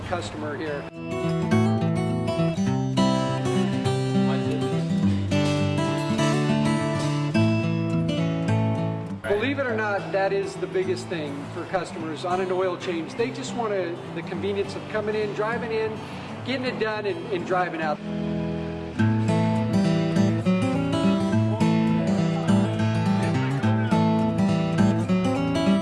customer here. Believe it or not, that is the biggest thing for customers on an oil change. They just want the convenience of coming in, driving in, getting it done, and driving out.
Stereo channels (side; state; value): both; identical; correlation 1.00